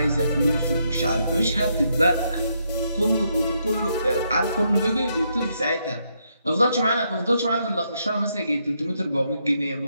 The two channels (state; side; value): inverted; both; correlation -0.77